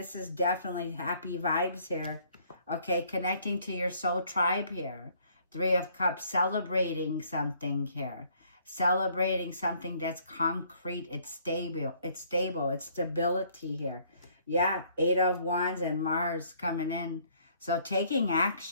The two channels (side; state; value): both; inverted; correlation -0.63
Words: is definitely happy vibes here. Okay, connecting to your soul tribe here. Three of Cups, celebrating something here. Celebrating something that's concrete. It's stable. It's stable. It's stability here. Yeah, Eight of Wands and Mars coming in. So taking